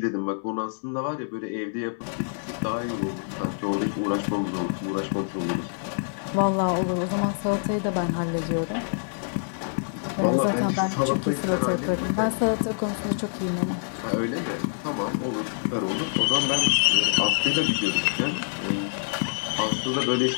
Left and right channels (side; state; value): right; silent; digital silence